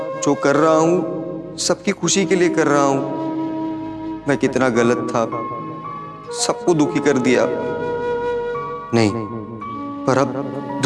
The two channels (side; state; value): both; identical; correlation 1.00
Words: जो कर रहा हूँ सबकी खुशी के लिए कर रहा हूँ। मैं कितना गलत था, सबको दुखी कर दिया। नहीं, पर अब